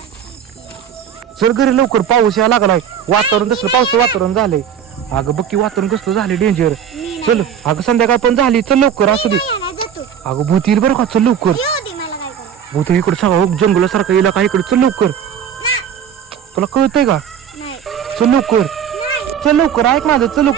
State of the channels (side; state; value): left; quieter; 8.5 dB